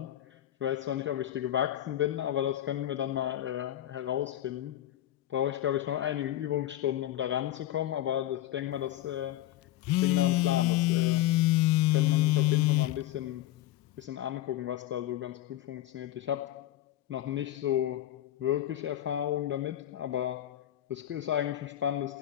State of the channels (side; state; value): right; quieter; 13.3 dB